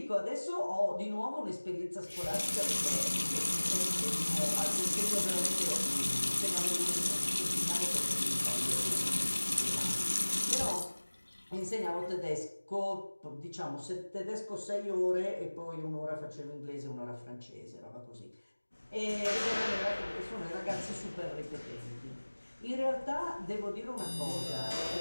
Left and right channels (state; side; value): inverted; both; correlation -1.00